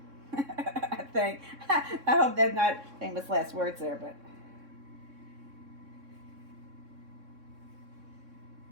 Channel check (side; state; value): left; late; 3.6 ms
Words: I think. I hope that's not famous last words there, but.